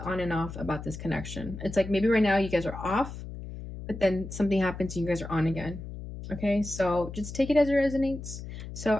on and off about this connection. It's like maybe right now you guys are off, but then something happens and you guys are on again. Okay, so just take it as it resonates. So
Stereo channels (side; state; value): left; noise; hum, 10 dB below the sound